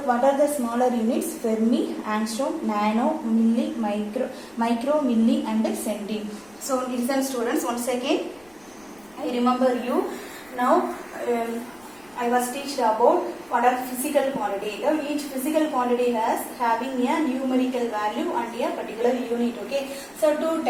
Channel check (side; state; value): left; noise; rumble, 30 dB below the sound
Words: what are the smaller units? Fermi, angstrom, nano, milli, micro, milli and centi. So listen students, once again I remember you. Now I was teached about what are physical quantity. Each physical quantity has having a numerical value and a particular unit. Okay, so two